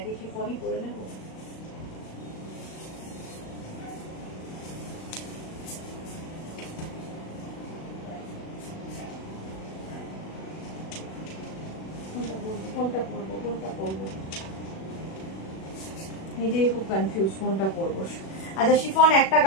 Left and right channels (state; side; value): late; right; 37 ms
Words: শিফনই পরে নেব? কোনটা পরবো নিজেই খুব কনফিউজ, কোনটা পরবো। আচ্ছা, শিফন একটা